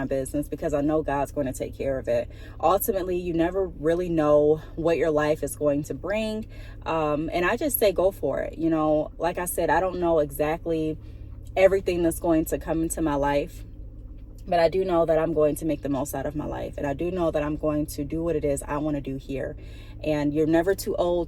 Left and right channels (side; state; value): both; identical; correlation 1.00